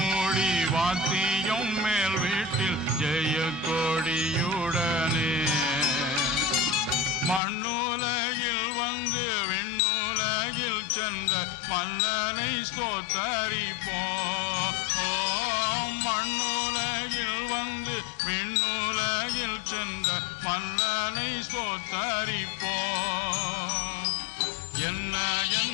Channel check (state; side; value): drops out; right; at 7.4 s